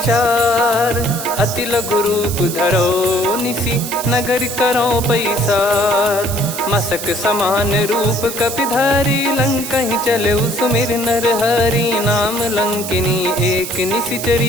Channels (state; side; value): noise; right; hiss, 7 dB below the sound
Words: अति लघु रूप धरो निसी, नगर करो पैसार। मसक समान रूप कपि धारी, लंकहि चले सुमिर नर हरि। नाम लंकिनी एक